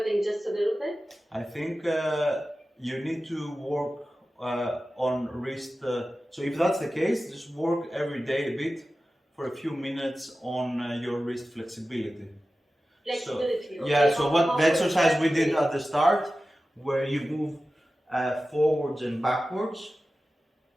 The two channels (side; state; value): both; normal; correlation 0.95